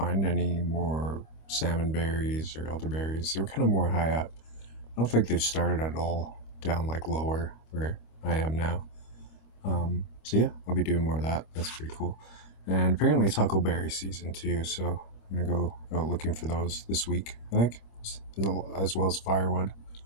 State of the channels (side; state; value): right; late; 25 ms